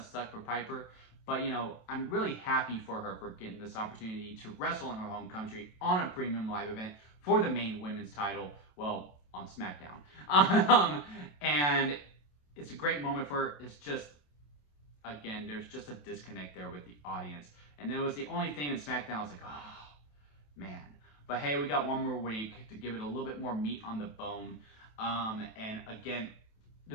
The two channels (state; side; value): late; right; 27 ms